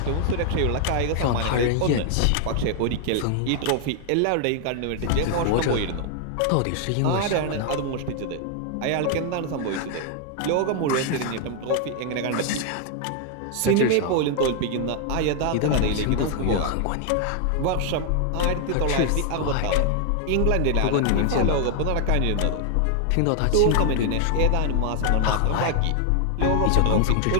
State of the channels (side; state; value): both; different; correlation 0.00